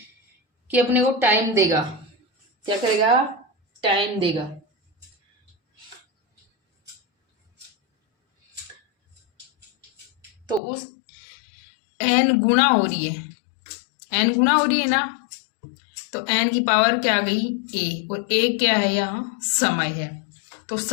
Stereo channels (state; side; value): drops out; right; at 10.6 s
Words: कि अपने को टाइम देगा, क्या करेगा, टाइम देगा। तो उस n गुना हो रही है, n गुना हो रही है ना, तो n की पावर क्या आ गई, a, और a क्या है, यहाँ समय है। तो